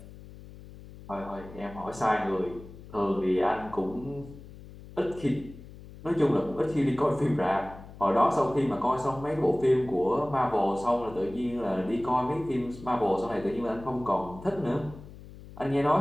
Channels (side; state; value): left; noise; hum, 17 dB below the sound